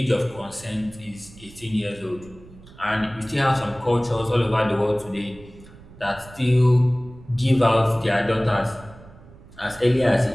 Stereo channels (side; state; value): right; noise; rumble, 21 dB below the sound